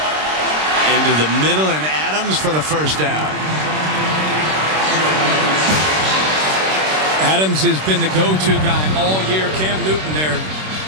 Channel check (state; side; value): late; left; 26 ms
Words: the middle, and Adams for the 1st down. Adams has been the go-to guy all year. Cam Newton there.